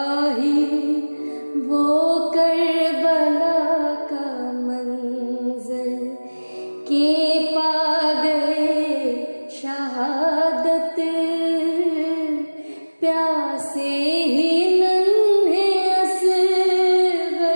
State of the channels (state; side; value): inverted; both; correlation -1.00